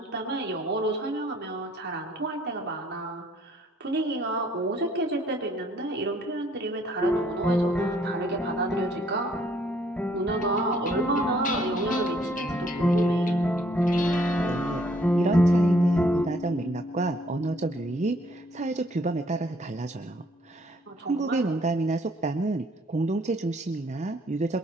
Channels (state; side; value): normal; both; correlation 0.64